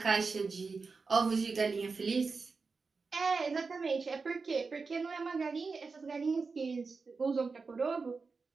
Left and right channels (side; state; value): left; quieter; 4.5 dB